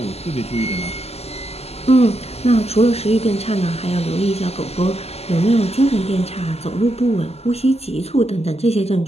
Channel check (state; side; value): late; right; 0.30 ms